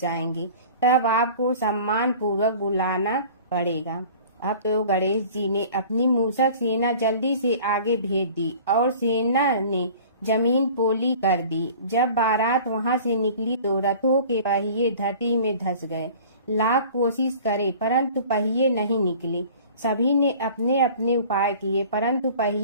जाएंगे। तब आपको सम्मान पूर्वक बुलाना पड़ेगा। अब तो गणेश जी ने अपनी मूसक सेना जल्दी से आगे भेज दी और सेना ने जमीन पोली कर दी। जब बारात वहां से निकली तो रथों के पहिए धरती में धंस गए। लाख कोशिश करे परंतु पहिए नहीं निकले। सभी ने अपने अपने उपाय किए परंतु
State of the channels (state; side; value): inverted; both; correlation -0.45